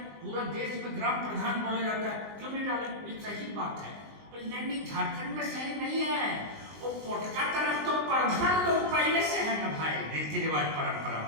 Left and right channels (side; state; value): left; late; 19 ms